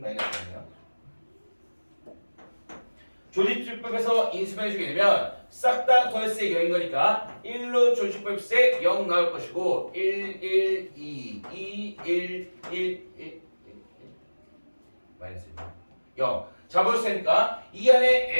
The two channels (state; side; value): inverted; both; correlation -1.00